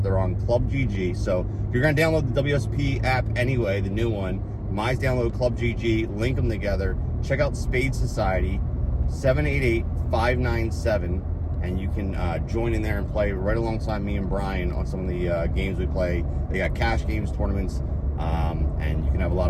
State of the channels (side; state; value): both; identical; correlation 1.00